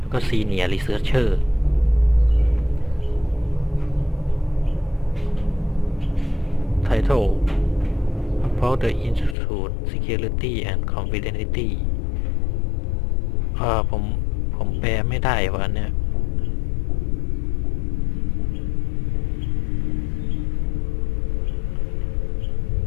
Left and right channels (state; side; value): drops out; right; at 9.3 s